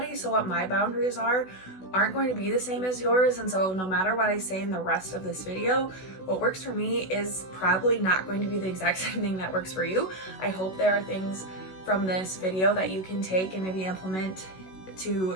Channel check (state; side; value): late; right; 16 ms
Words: So what my boundaries aren't going to be the same as yours, and so no matter what I say in the rest of this video, what works for me is probably not going to be the exact same thing that works for you. I hope there are things from this video that you can take and maybe implement to